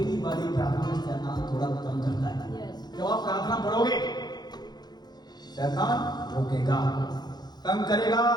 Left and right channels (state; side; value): late; right; 0.20 ms